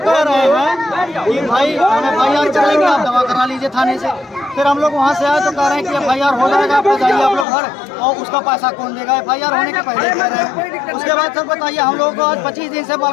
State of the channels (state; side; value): drops out; right; at 7.5 s